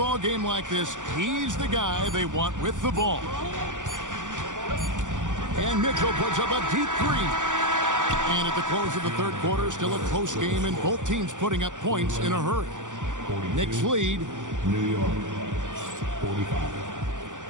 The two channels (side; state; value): left; late; 0.87 ms